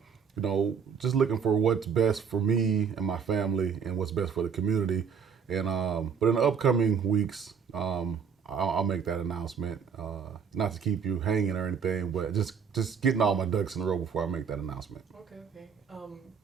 just looking for what's best for me and my family and what's best for the community. And but in the upcoming weeks, I'll make that announcement. Not to keep you hanging or anything, but just getting all my ducks in a row before I make that announcement. Okay, okay.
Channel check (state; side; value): quieter; left; 6.7 dB